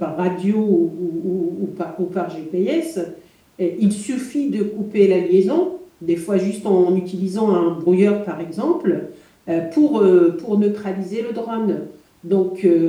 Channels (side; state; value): both; identical; correlation 1.00